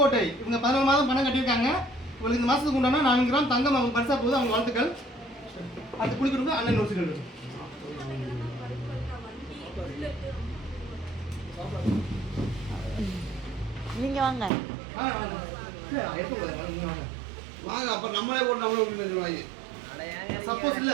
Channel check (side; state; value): left; drops out; at 14.5 s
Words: இவங்க 14 மாதம் பணம் கட்டியிருக்காங்க. உங்களுக்கு இந்த மாதத்துக்கு உண்டான 4 கிராம் தங்கம் அவங்க பரிசா போகுது. அவங்க வாழ்த்துக்கள். அது குளிக்கணும். அண்ணன் யோசிச்சு நீங்கள் வாங்க. வாங்க, அப்புறம் நம்மளே போட்டு நம்மளே விட்டு சொல்லுவாங்க. சப்போஸ்